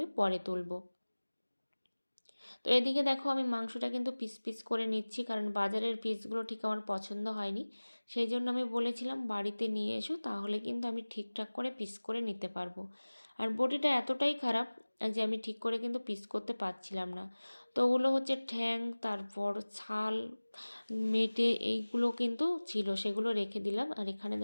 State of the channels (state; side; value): inverted; both; correlation -1.00